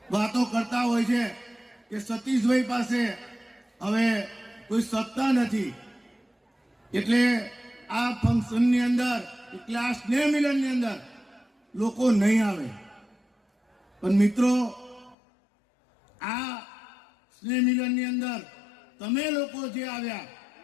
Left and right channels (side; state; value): right; drops out; at 15.2 s